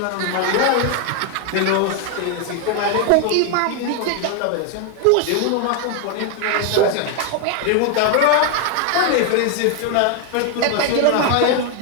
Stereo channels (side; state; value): both; different; correlation 0.01